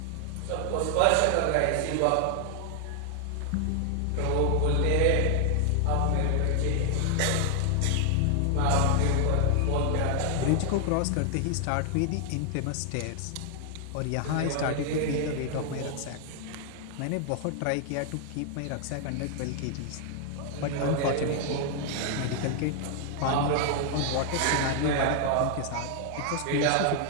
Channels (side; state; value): both; different; correlation 0.00